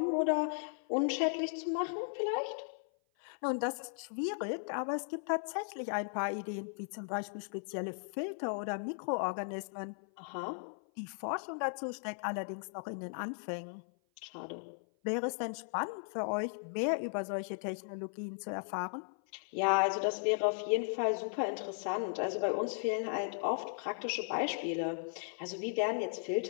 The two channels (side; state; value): right; silent; 53 dB below the other